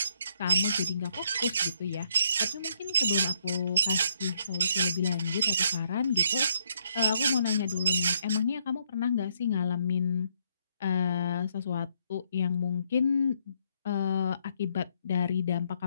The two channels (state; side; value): inverted; both; correlation -0.72